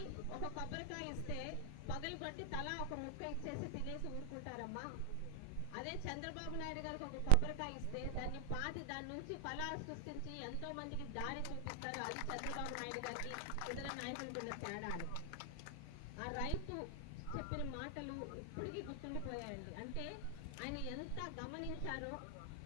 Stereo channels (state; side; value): different; both; correlation 0.00